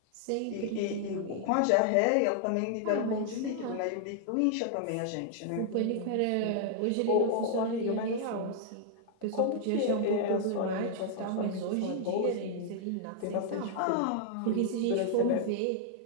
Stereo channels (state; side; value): different; both; correlation 0.00